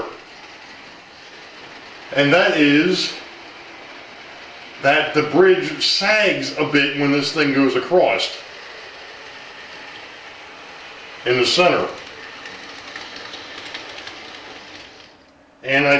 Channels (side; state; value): both; identical; correlation 1.00